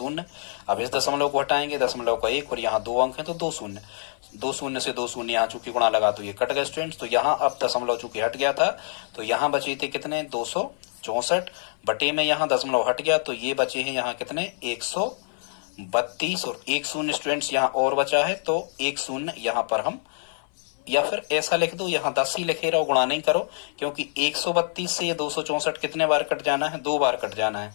अब इस दशमलव को हटाएंगे, दशमलव का 1 और यहाँ 2 अंक हैं तो 2 शून्य। 2 शून्य से 2 शून्य यहाँ चूंकि गुणा लगा तो ये कट गए स्टूडेंट्स। तो यहाँ अब दशमलव चूंकि हट गया था तो यहाँ बचे थे कितने 264 बटे में यहाँ दशमलव हट गया तो ये बचे हैं यहाँ कितने 132 और 1 शून्य स्टूडेंट्स यहाँ और बचा है तो 1 शून्य यहाँ पर हम, या फिर ऐसा लिख दो यहाँ 10 ही लिखे रहो, गुणा नहीं करो, क्योंकि 132 से ये 264 कितने बार कट जाना है, 2 बार कट जाना है।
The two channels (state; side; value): silent; right; 58 dB below the other